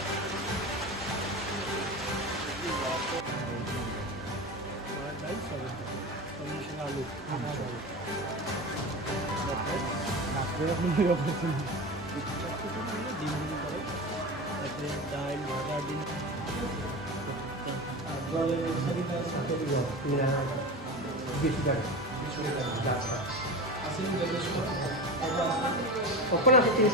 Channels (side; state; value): both; normal; correlation 0.25